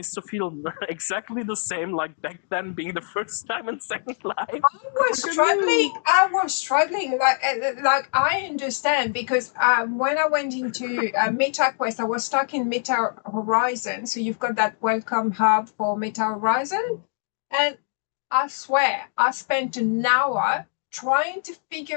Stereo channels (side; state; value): right; silent; 63 dB below the other